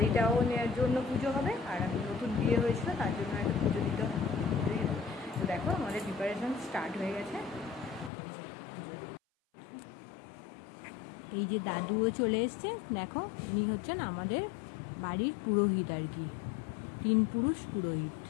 নেওয়ার জন্য পুজো হবে, আর আমি নতুন বিয়ে হয়েছিল তার জন্য একটা পুজো দিতে হবে। তো দেখো আমাদের প্রিপারেশন স্টার্ট হয়ে গেছে। এই যে দাদুও চলে এসছে, দেখো উনি হচ্ছেন আমাদের বাড়ির পুরোহিত আর কি, 3 পুরুষ পুরোহিত।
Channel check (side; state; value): right; drops out; at 8.1 s